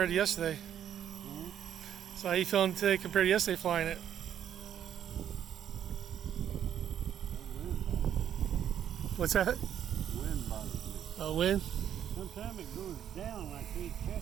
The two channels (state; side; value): quieter; left; 9.8 dB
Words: to yesterday? So how you feeling today compared to yesterday flying it? What's that? Wind bothers me. Oh, wind? Sometimes it goes down and I can't check